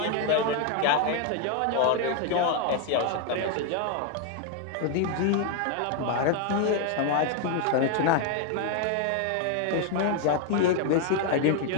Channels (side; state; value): both; different; correlation 0.01